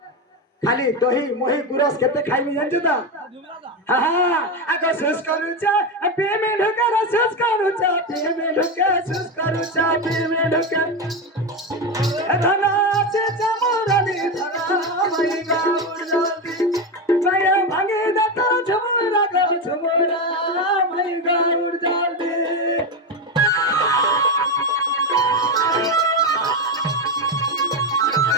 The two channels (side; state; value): both; normal; correlation 0.13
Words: खाली दही मोही गुरस केते खाइबी जानछु त हां आको सुस करूचा पेमे ढुके सुस करूचा पेमे ढुके सुस करूचा पेमे ढुके धना से चमोरानी धना मई गाउर जल्दी माया भागे दता झमरा गो झमरा मई गाउर जल्दी